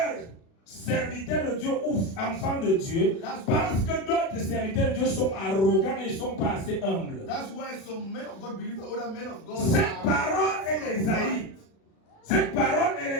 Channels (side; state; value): right; late; 36 ms